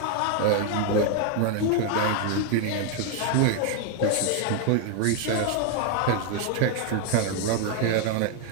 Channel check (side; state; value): both; different; correlation 0.01